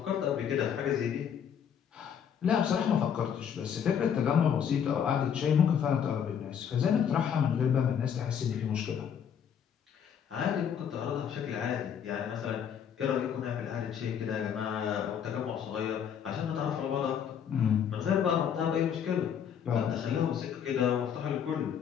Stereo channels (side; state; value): right; quieter; 8.2 dB